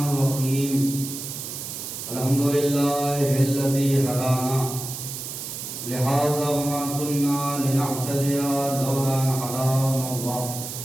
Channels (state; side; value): noise; right; hiss, 7 dB below the sound